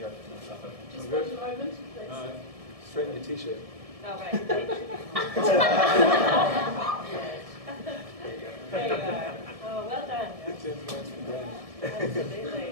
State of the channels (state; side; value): late; left; 1.7 ms